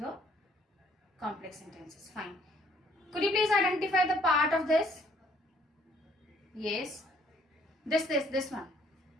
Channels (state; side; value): normal; both; correlation 0.63